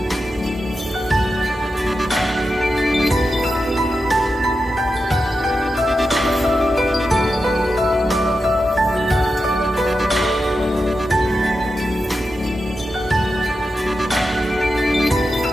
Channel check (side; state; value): both; normal; correlation 0.89